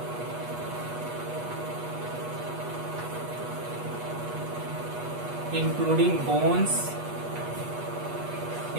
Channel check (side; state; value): left; late; 8.2 ms